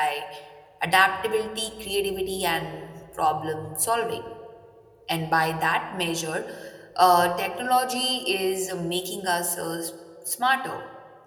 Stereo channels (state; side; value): identical; both; correlation 1.00